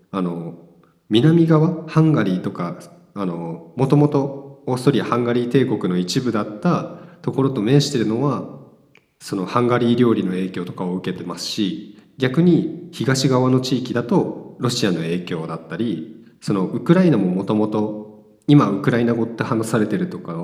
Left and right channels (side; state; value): both; identical; correlation 1.00